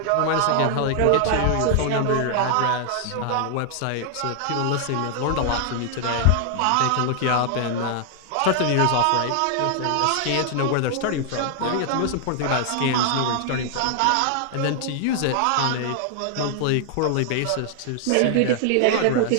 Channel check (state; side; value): different; both; correlation 0.00